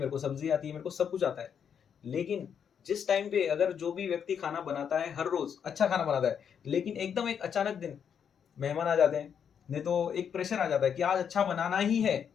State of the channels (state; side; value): quieter; right; 7.7 dB